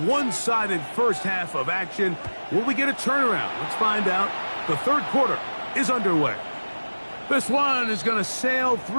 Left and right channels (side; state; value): both; inverted; correlation -1.00